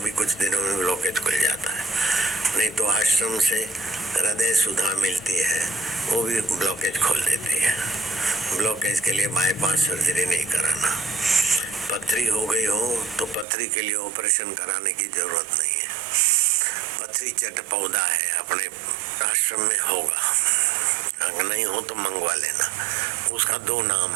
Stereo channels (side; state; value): left; drops out; at 13.5 s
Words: कुछ दिनों में ब्लॉकेज खुल जाता है। नहीं तो आश्रम से हृदय सुधा मिलती है, वो भी ब्लॉकेज खोल देती है। ब्लॉकेज के लिए बाईपास सर्जरी नहीं कराना। पथरी हो गई हो तो पथरी के लिए ऑपरेशन कराने की जरूरत नहीं है। पथरी चट पौधा है, अपने आश्रम में होगा, अगर नहीं हो तो मंगवा लेना। उसका 2